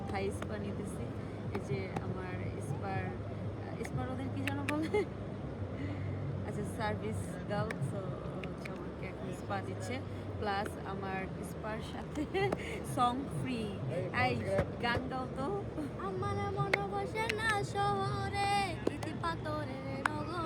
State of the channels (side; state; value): both; identical; correlation 1.00